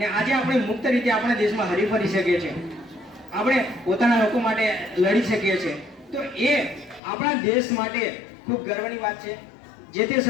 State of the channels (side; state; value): right; drops out; at 7.0 s